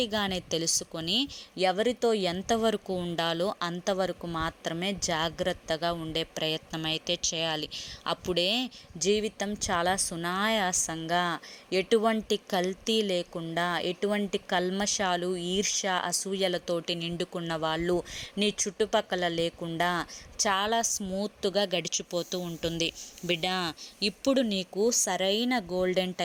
తెలుసుకొని ఎవరితో ఎంతవరకు ఉండాలో అంతవరకు మాత్రమే జాగ్రత్తగా ఉండే ప్రయత్నం అయితే చేయాలి. అప్పుడే జీవితం చాలా సునాయాసంగా, ఎటువంటి కల్తీ లేకుండా, ఎటువంటి కల్మషాలు, ఈర్ష్య, అసూయలతోటి నిండుకున్న వాళ్ళు నీ చుట్టుపక్కల లేకుండా చాలా స్మూత్గా గడిచిపోతూ ఉంటుంది. బిడ్డ, ఇప్పుడు నీకు సరైన గోల్డెన్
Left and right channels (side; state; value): both; identical; correlation 1.00